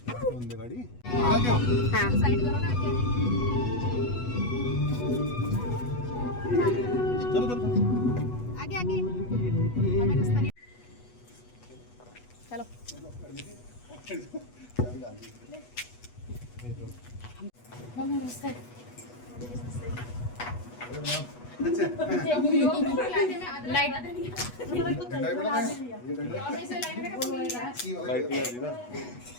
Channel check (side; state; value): right; late; 8.2 ms